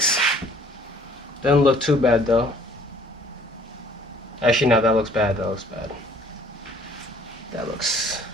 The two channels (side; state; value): both; normal; correlation 0.57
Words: Doesn't look too bad though. Actually, no, that looks bad. That looks bad.